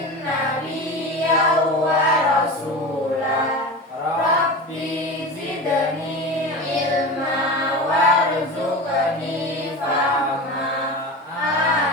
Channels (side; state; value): both; normal; correlation 0.28